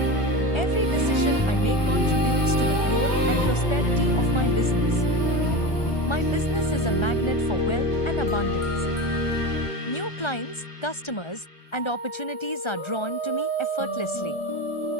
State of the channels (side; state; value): right; late; 1.3 ms